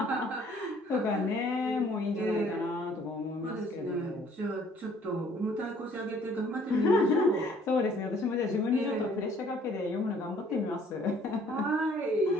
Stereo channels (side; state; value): both; normal; correlation 0.59